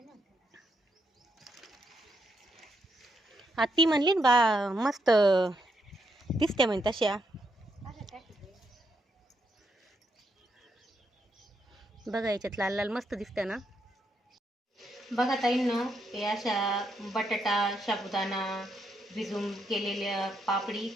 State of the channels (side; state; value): both; normal; correlation 0.78